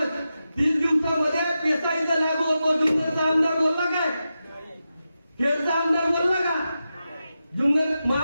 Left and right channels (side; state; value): both; inverted; correlation -0.90